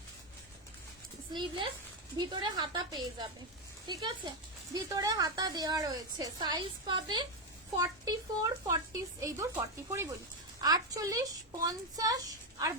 স্লিভলেস, ভিতরে হাতা পেয়ে যাবে, ঠিক আছে, ভিতরে হাতা দেওয়া রয়েছে। সাইজ পাবে 44, 40 এই দূর 44ই বলি, 48, 50 আর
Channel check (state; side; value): normal; both; correlation 0.07